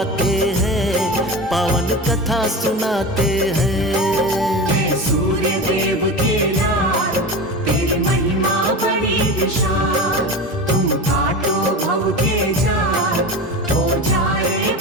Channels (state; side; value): normal; both; correlation 0.27